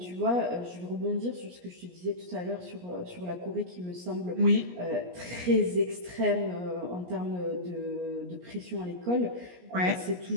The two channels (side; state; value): left; late; 17 ms